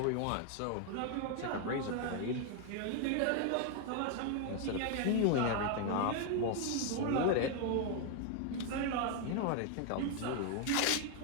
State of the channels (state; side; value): different; both; correlation 0.00